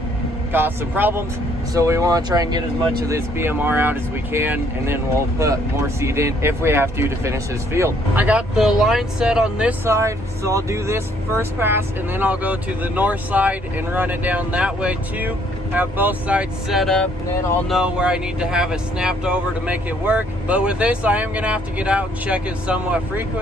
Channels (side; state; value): both; normal; correlation 0.65